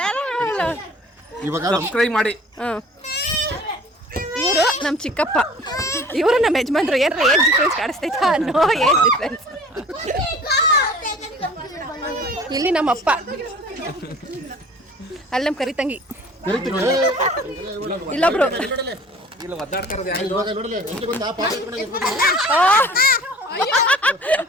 ಇವಾಗ ಸಬ್ಸ್ಕ್ರೈಬ್ ಮಾಡಿ ಇವರು ನಮ್ಮ ಚಿಕ್ಕಪ್ಪ ಇವರು ನಮ್ಮ ಯಜಮಾನ್ರು ಏನಾರ ಏಜ್ ಡಿಫ್ರೆನ್ಸ್ ಕಾಣಿಸ್ತೈತಾ ನೋ ಏಜ್ ಡಿಫ್ರೆನ್ಸ್ ಇಲ್ಲಿ ನಮ್ಮಪ್ಪ ಅಲ್ಲಿ ನಮ್ಮ ಕರಿತಂಗಿ ಇಲ್ಲೊಬ್ರು ಇಲ್ಲ ಒದ್ದಾಡ್ತಾರದು ಇವಾಗ ನೋಡಲಿ ಎಂಟು ಬಂದ ಪಾಪ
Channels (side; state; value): both; normal; correlation 0.47